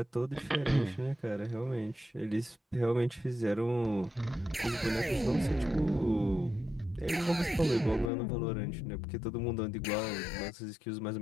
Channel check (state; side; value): drops out; right; at 8.1 s